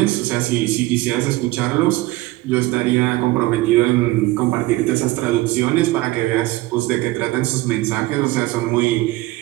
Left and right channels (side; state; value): left; quieter; 19.1 dB